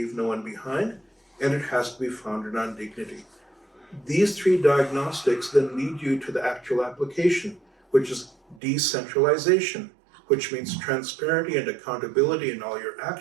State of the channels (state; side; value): drops out; left; at 8.6 s